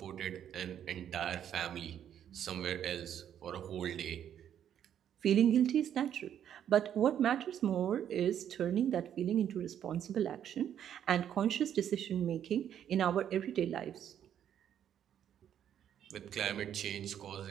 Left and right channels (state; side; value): quieter; left; 9.7 dB